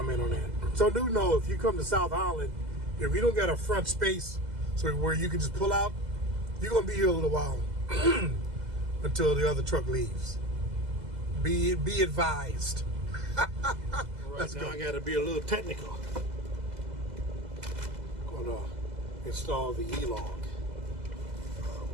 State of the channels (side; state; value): left; late; 2.0 ms